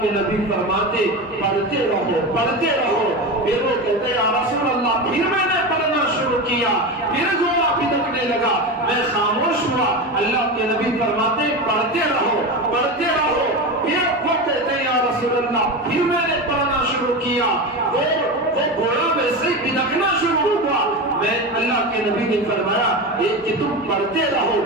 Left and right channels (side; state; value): both; normal; correlation 0.22